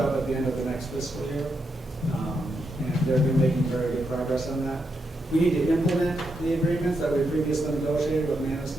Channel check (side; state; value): both; normal; correlation 0.83